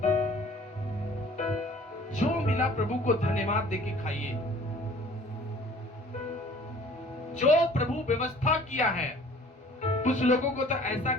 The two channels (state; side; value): normal; both; correlation 0.51